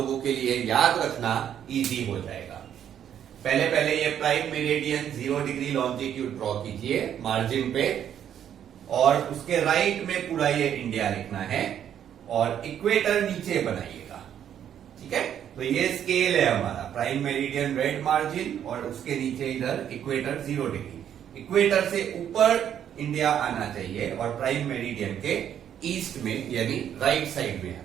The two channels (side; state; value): left; quieter; 9.6 dB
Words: के लिए याद रखना इजी हो जाएगा। पहले ये prime meridian 0 degree longitude draw कीजिए मार्जिन पे, और उसके राइट में पूरा ये इंडिया लिखना है और इक्वेटर नीचे बनाइएगा, ठीक है। तो ये स्केल है हमारा, प्राइम मेरिडियन रेड मार्जिन और उसके नीचे इधर इक्वेटर 0 डिग्री। इक्वेटर से ऊपर इंडिया आना चाहिए और प्राइम मेरिडियन के ईस्ट में यानी राइट साइड में